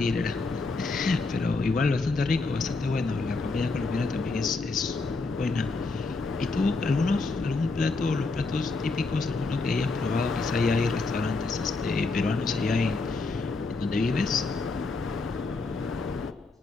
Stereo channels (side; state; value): right; quieter; 3.7 dB